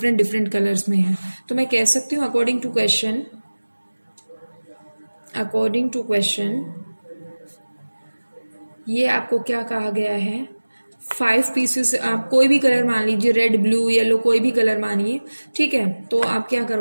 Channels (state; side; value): inverted; both; correlation -1.00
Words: कलर्स में हैं। तो मैं कह सकती हूँ अकॉर्डिंग टू क्वेश्चन ये आपको क्या कहा गया है, 5 पीसेस, आप कोई भी कलर मान लीजिए, रेड, ब्लू, येलो, कोई भी कलर मानिए, ठीक है। तो आप क्या